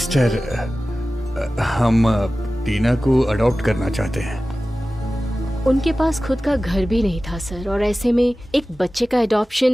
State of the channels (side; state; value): both; normal; correlation 0.96